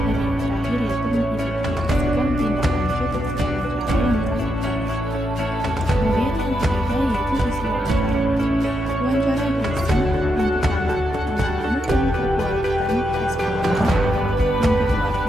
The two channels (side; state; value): both; normal; correlation 0.83